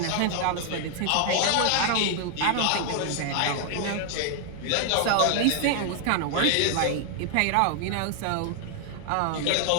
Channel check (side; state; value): both; different; correlation 0.00